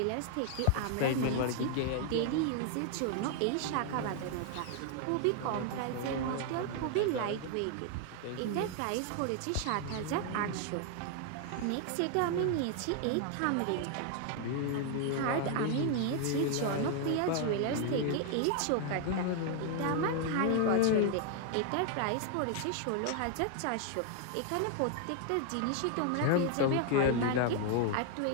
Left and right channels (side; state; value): both; different; correlation 0.00